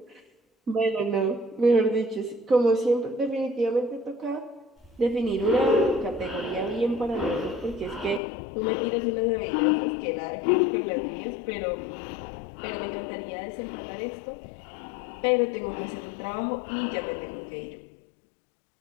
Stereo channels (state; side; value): drops out; right; at 8.2 s